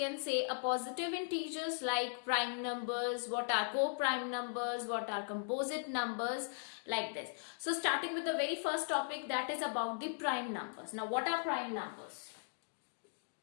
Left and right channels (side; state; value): right; silent; digital silence